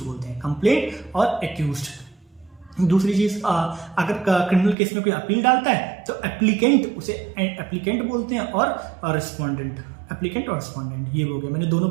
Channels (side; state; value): left; drops out; at 4.8 s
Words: बोलते हैं। कंप्लेंट और एक्यूज्ड। दूसरी चीज, अगर क्रिमिनल केस में कोई अपील डालता है तो एप्लीकेंट, उसे एप्लीकेंट बोलते हैं, और रिस्पोंडेंट, एप्लीकेंट और रिस्पोंडेंट, ये हो गया। मैंने दोनों